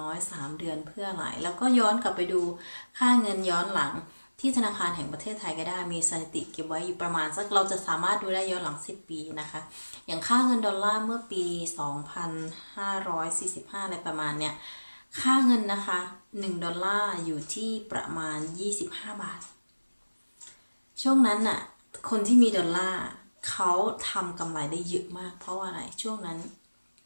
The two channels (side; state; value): both; inverted; correlation -1.00